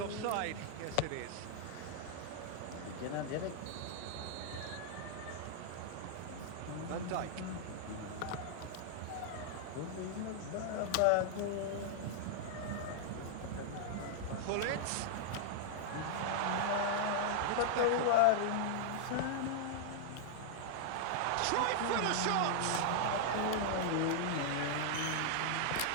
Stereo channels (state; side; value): different; both; correlation -0.01